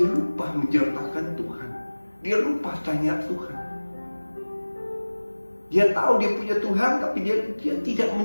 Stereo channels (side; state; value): both; inverted; correlation -1.00